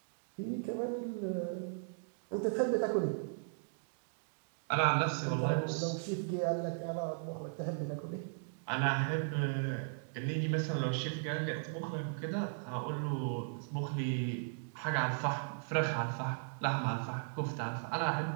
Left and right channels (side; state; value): left; silent; digital silence